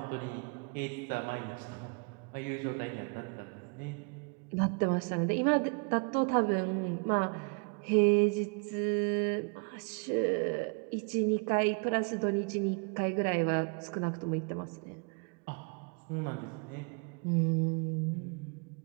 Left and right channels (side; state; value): left; quieter; 34.9 dB